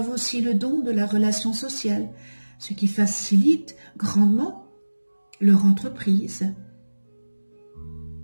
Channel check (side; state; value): both; inverted; correlation -1.00